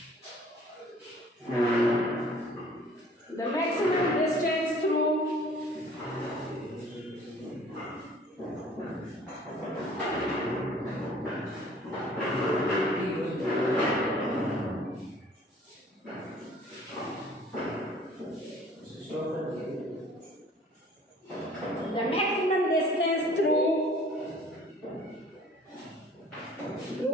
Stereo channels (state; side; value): normal; both; correlation 0.52